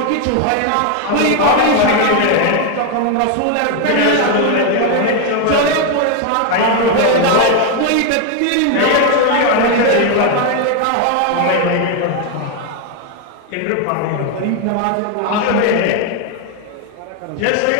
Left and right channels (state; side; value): different; both; correlation 0.01